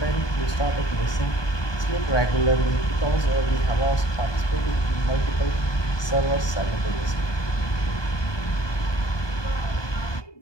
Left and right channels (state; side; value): late; right; 1.2 ms